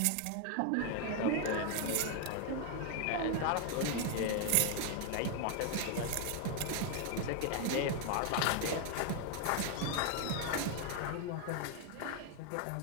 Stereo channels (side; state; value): both; different; correlation 0.01